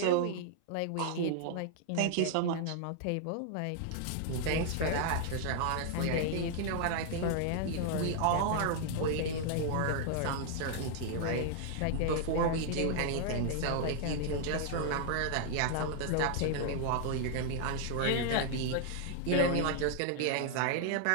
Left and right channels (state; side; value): different; both; correlation 0.00